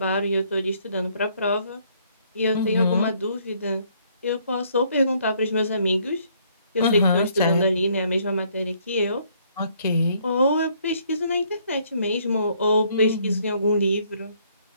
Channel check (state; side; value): inverted; both; correlation -0.66